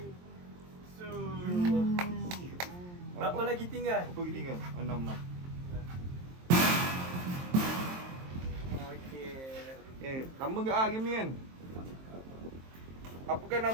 Berapa lagi tinggal? Apa lagi tinggal? 6. Okey. Lama ke game ni kan? Apakah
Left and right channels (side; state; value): left; late; 23 ms